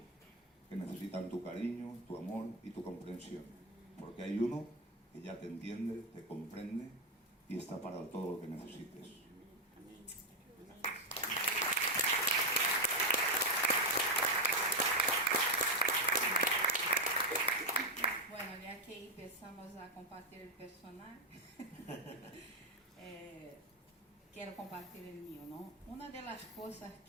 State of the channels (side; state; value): both; normal; correlation 0.05